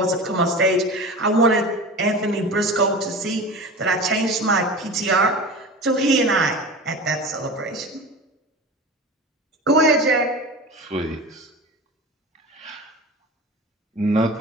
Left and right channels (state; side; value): normal; both; correlation 0.32